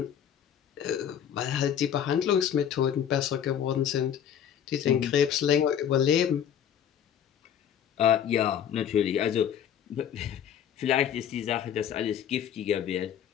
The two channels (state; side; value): quieter; right; 9.2 dB